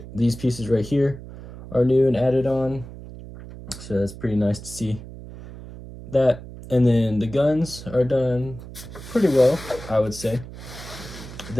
These pieces right here are new and added on, so that's pretty nice to see that. And then the guns are done pretty well, I would say.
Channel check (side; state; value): right; noise; hum, 14 dB below the sound